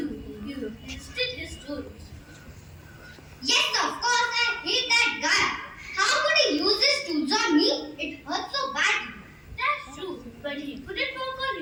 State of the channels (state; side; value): identical; both; correlation 1.00